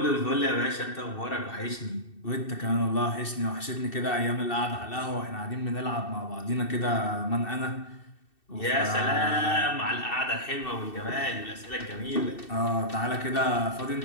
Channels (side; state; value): right; late; 2.7 ms